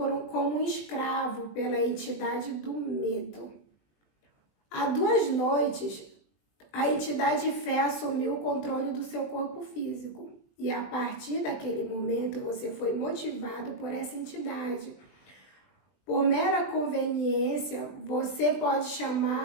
um escravo pela entidade do medo. Há 2 noites, a entidade fé assumiu o controle do seu corpo físico. E a partir daquele momento, você foi motivado por essa entidade. Por mera conveniência, você pode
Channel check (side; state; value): right; late; 20 ms